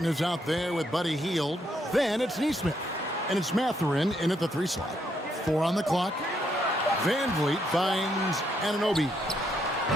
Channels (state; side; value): normal; both; correlation 0.75